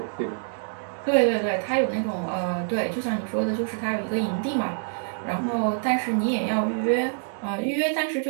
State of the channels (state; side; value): silent; left; digital silence